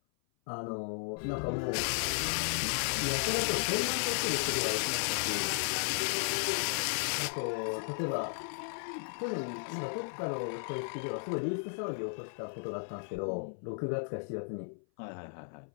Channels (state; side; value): silent; right; 55 dB below the other